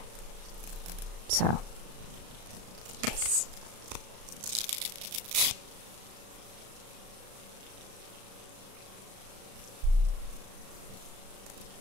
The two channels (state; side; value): late; left; 35 ms